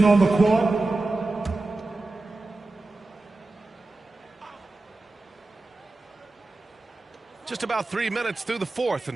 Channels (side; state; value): left; quieter; 3.1 dB